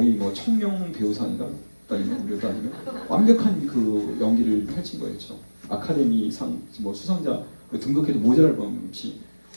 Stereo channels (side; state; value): both; inverted; correlation -1.00